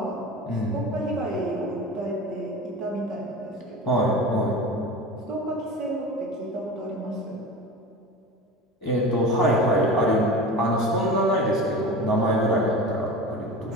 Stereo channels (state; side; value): normal; both; correlation 0.32